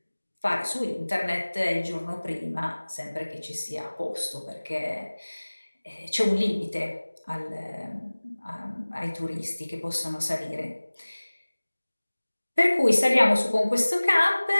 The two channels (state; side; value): inverted; both; correlation -1.00